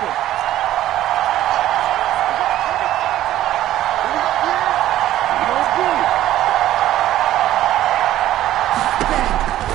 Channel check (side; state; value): left; quieter; 13.5 dB